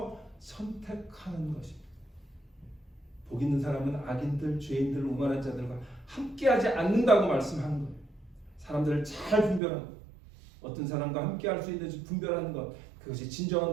선택하는 것입니다. 복 있는 사람은 악인들, 죄인들, 오만한 자들과 함께하지 않는다고 말씀하는 거예요. 사람들을 잘 분별하고 어떤 사람과 함께할 수 있는지 분별하는 것, 그것이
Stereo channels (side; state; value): left; drops out; at 9.6 s